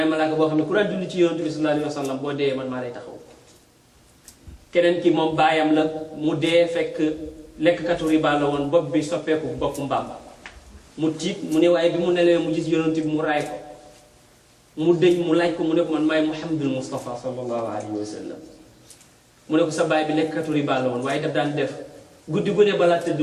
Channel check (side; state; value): both; identical; correlation 1.00